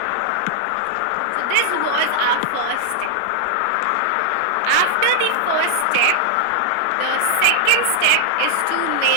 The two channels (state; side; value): different; both; correlation -0.01